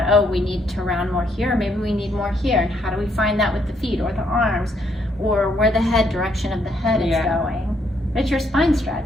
oh, we need to round more here. Maybe we need more here. And how do we find that with the feet or the arms or where the head direction of the head is going? It's your spine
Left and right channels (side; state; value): both; normal; correlation 0.72